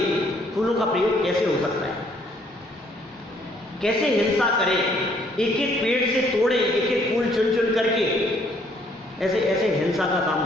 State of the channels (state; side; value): normal; both; correlation 0.65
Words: फूलों का प्रयोग कैसे हो सकता है? कैसे हिंसा करें, एक एक पेड़ से तोड़े, एक एक फूल चुन चुन करके, ऐसे ऐसे हिंसा का काम